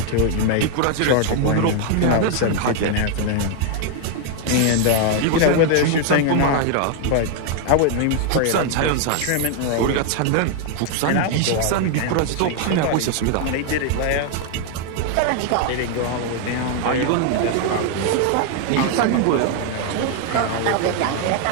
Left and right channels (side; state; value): both; different; correlation 0.00